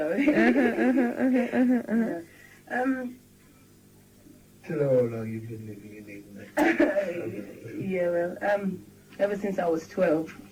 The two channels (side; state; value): both; identical; correlation 1.00